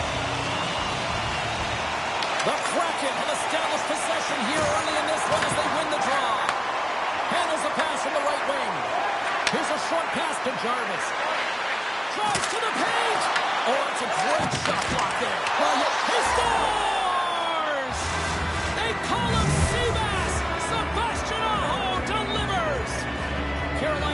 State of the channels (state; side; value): identical; both; correlation 1.00